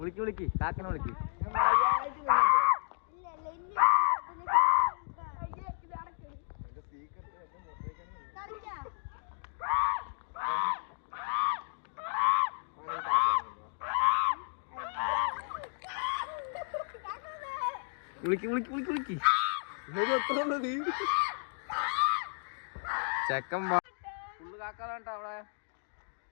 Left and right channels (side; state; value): right; silent; digital silence